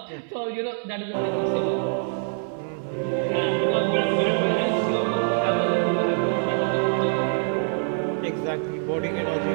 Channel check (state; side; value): silent; left; 58 dB below the other